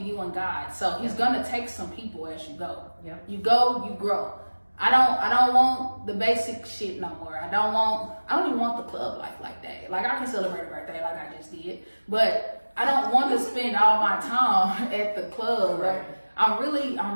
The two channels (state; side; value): inverted; both; correlation -1.00